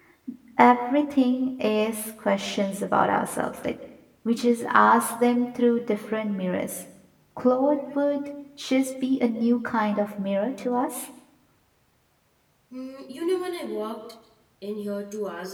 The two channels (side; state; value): both; identical; correlation 1.00